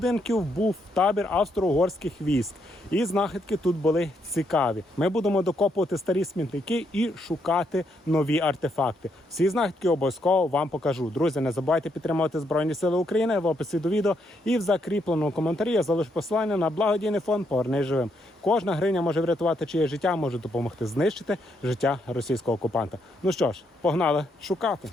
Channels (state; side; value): normal; both; correlation 0.76